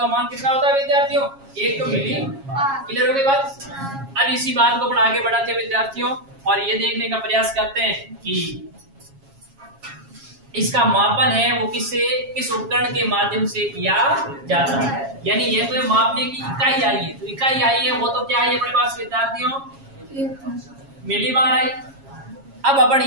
मान कितना होता है विद्यार्थियों? 1 तो मिली। क्लियर हो गई बात? अब इसी बात को अपन आगे बढ़ाते हैं विद्यार्थियों, और ये देखने का प्रयास करते हैं कि इसका मापन है वो किस उपकरण के माध्यम से किया जाता है। यानी ये तो मापने की इकाई आई है, तो इकाई आई है वो तो क्या है अपने पास विद्यार्थियों? मिली बार आई। अब अपन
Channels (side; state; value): left; late; 7.3 ms